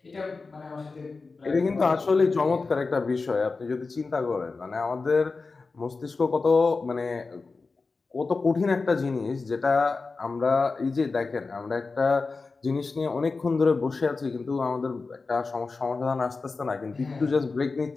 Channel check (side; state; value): right; quieter; 4.1 dB